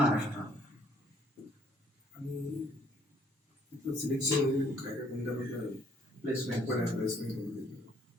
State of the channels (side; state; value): both; normal; correlation 0.63